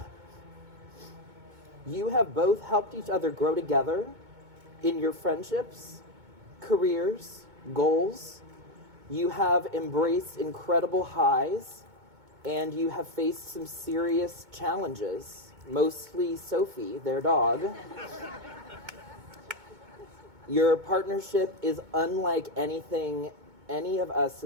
You have both helped each other grow together in your friendships, careers, goals. You have embraced incredible highs, and you have faced some serious challenges, mostly Sophie, their dog. Your partnership is unlike anything any of us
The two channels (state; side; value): late; left; 2.2 ms